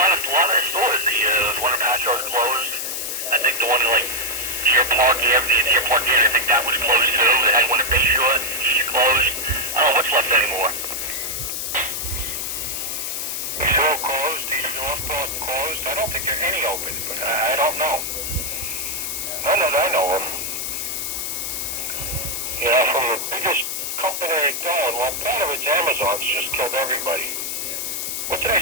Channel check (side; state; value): left; noise; hiss, 3 dB below the sound